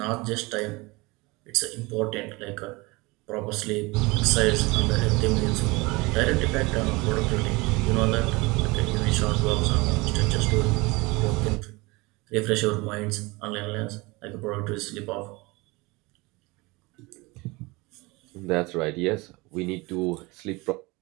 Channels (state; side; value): quieter; left; 24.3 dB